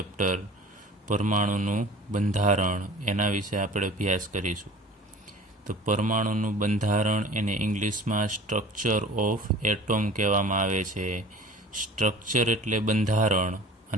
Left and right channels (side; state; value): both; normal; correlation 0.44